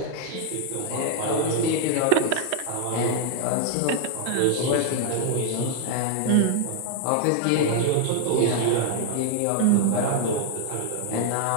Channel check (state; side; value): different; both; correlation 0.00